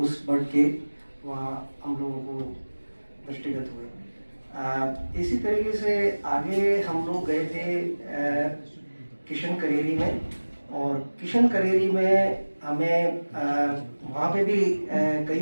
बर्ड के वहाँ हम लोगों को दृष्टिगत हुए। इसी तरीके से आगे हम लोग गए थे किशन करेरी में, और किशन करेरी में हमें वहाँ पे भी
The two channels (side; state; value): both; inverted; correlation -1.00